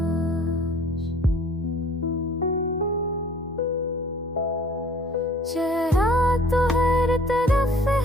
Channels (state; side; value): normal; both; correlation 0.52